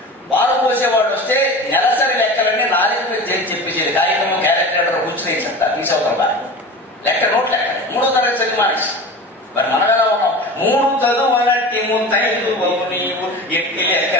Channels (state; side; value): normal; both; correlation 0.33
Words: వారు పోసేవాడు వస్తే నెలసరి లెక్కలన్నీ 4 చేసి చెప్పేసేది. కాగితము క్యాలిక్యులేటర్ కూర్చుని చెప్తా తీసవుతాం బాగా లెక్క నోట్ లెక్క 3వ తరగతి చదివి మానేసి. మరి మనం ఎలా ఉన్నాం? 3 చదువులట్టి ముంతైదు నీవు ఎట్టి